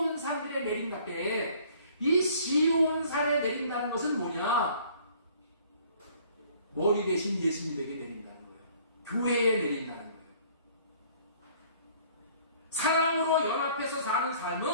내린다때. 이 시온산에 내린다는 것은 뭐냐? 머리 대신 예수님에게 내린다는 거예요. 교회에 내린다는 거예요. 사랑으로 연합해서 사는 삶은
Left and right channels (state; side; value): inverted; both; correlation -0.55